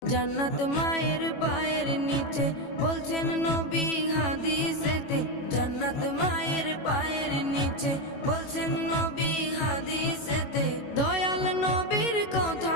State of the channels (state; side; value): late; right; 21 ms